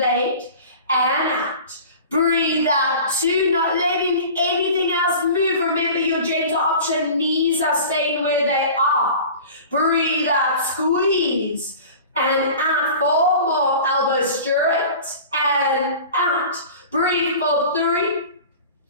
and out. Breathe out 2, not letting anything else move. Remember your gentle option, knees are staying where they are. Breathe out, squeeze, and out 4 more, elbows straight, and out. Breathe for 3,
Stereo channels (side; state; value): both; inverted; correlation -0.39